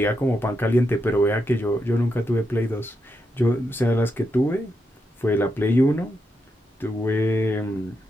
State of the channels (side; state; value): both; normal; correlation 0.84